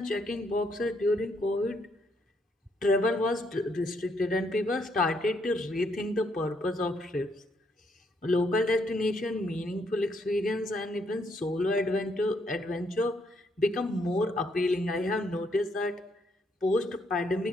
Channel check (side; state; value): both; normal; correlation 0.73